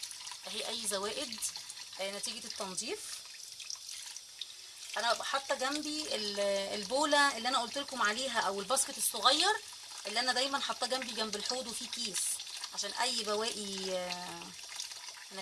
اهي اي زوائد نتيجه التنظيف. انا ببقى حاطه جنبي البوله اللي انا قلت لكم عليها، او الباسكت الصغير اللي انا دايما حاطاه جنبي جنب الحوض، وفيه كيس عشان اي بواقي من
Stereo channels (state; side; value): identical; both; correlation 1.00